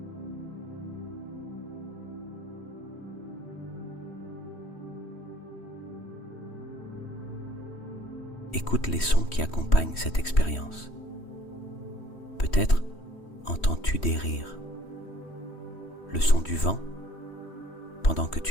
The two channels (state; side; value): late; right; 3.1 ms